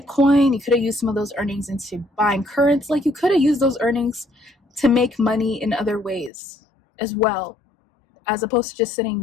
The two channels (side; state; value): right; drops out; at 6.3 s